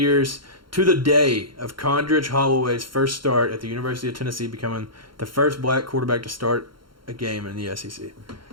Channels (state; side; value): late; left; 0.73 ms